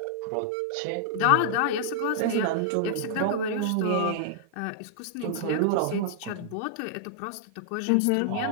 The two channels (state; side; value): different; both; correlation -0.01